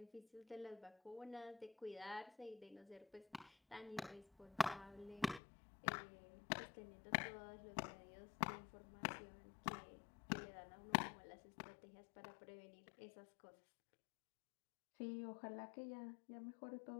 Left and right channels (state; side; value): drops out; right; at 5.4 s